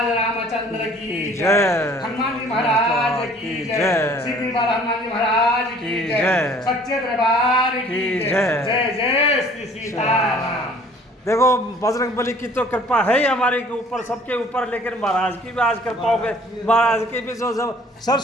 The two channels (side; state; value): both; normal; correlation 0.53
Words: रामचंद्र की जय, हनुमान जी महाराज की जय, श्री हनुमान जी महाराज की जय, सच्चे दरबार की जय, जय जय श्री सीताराम। देखो बजरंगबली की तो कृपा है ही हमारे के ऊपर, सबके ऊपर, लेकिन महाराज की भी आज कृपा हो गई। महाराज की भी जो